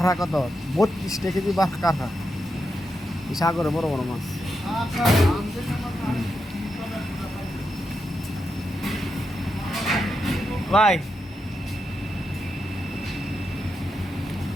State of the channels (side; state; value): both; normal; correlation 0.86